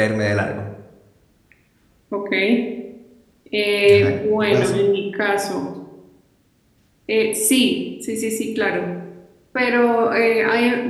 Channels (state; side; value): identical; both; correlation 1.00